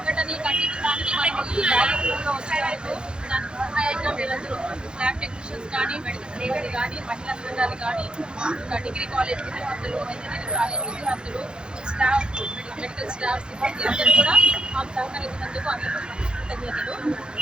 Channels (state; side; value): late; left; 0.049 ms